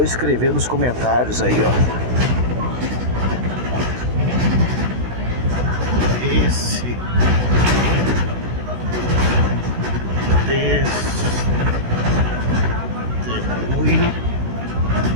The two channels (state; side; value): late; left; 16 ms